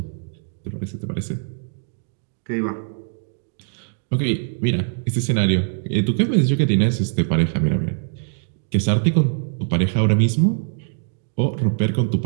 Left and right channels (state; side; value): silent; left; digital silence